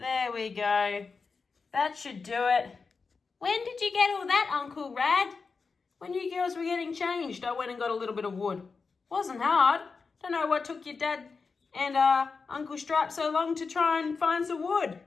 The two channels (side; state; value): right; quieter; 4.8 dB